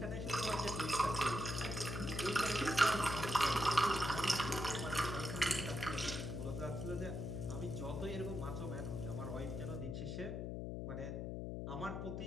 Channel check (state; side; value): noise; left; hum, 4 dB below the sound